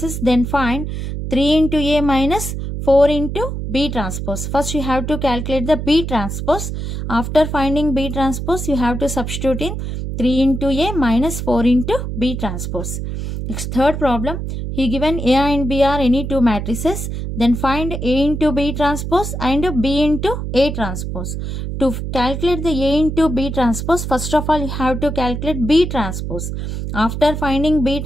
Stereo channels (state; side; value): noise; right; hum, 5 dB below the sound